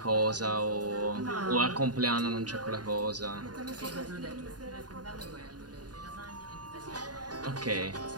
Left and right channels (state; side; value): late; left; 0.69 ms